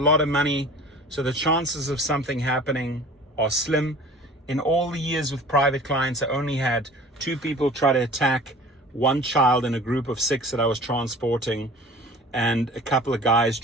of money, so the chances of something happening are slim. In all the years with private clients, I only had 2 people try to attack one child in a group of 6 that I was transporting, and a couple of guys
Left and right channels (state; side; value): normal; both; correlation 0.44